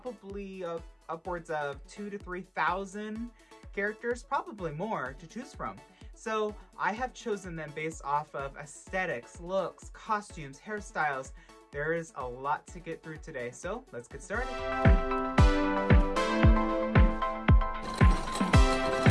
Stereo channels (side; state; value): both; identical; correlation 1.00